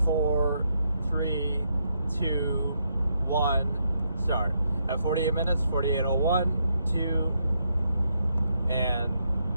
4, 3, 2, 1, start. At 48 minutes, 48:01, 2, and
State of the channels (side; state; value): both; inverted; correlation -0.78